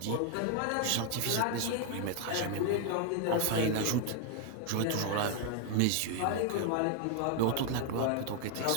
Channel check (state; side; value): different; both; correlation 0.00